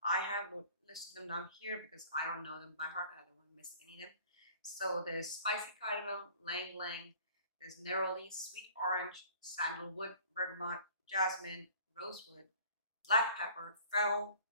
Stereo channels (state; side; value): inverted; both; correlation -0.49